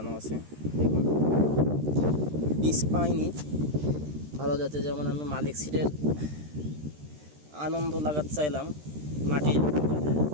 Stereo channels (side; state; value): left; late; 13 ms